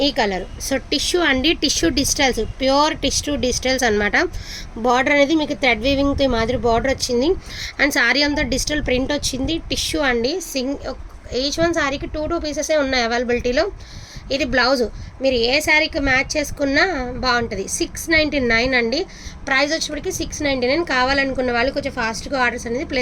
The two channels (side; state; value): both; identical; correlation 1.00